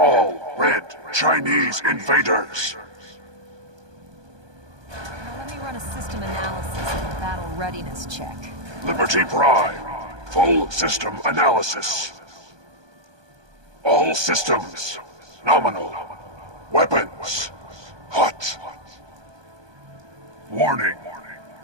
red Chinese invaders. Now let me run a system analysis and a battle readiness check. Liberty Prime, full system analysis. All systems nominal. Weapons hot. Warning:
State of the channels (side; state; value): left; late; 1.2 ms